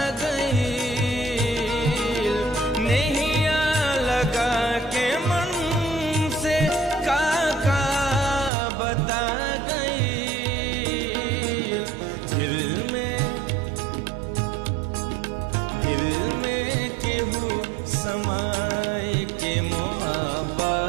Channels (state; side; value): drops out; left; at 8.5 s